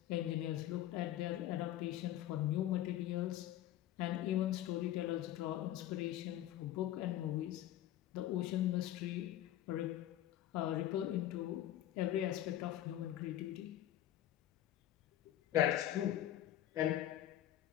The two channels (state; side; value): quieter; right; 12.9 dB